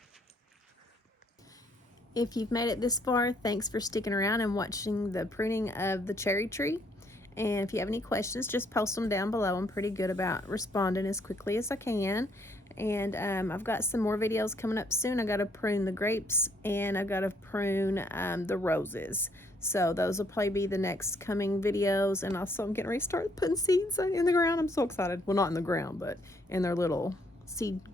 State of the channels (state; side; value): normal; both; correlation 0.68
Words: If you've made it this far, thanks for sticking around and watching the pruning of the cherry tree. And if you have any questions, just post them down below. I'm pretty good about responding as quickly as I can. And I've got some more videos coming up soon. I got to prune the grapes, and I got to prune the roses. So those will probably be the next coming videos. And also I'm getting ready to start putting seeds in the ground. I'm so excited. Well, not in the ground, but in their little seed